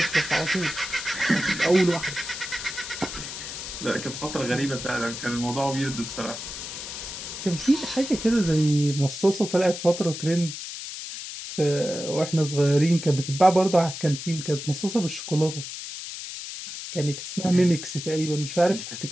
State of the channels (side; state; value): left; noise; hiss, 8 dB below the sound